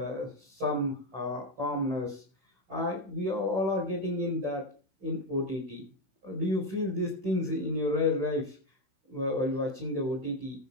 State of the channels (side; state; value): left; late; 16 ms